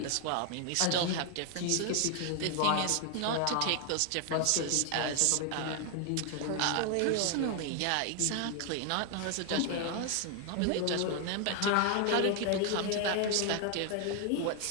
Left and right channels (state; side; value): different; both; correlation 0.00